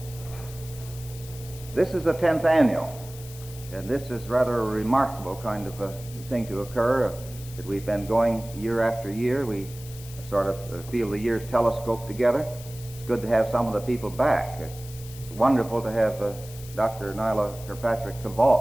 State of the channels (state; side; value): noise; left; hiss, 17 dB below the sound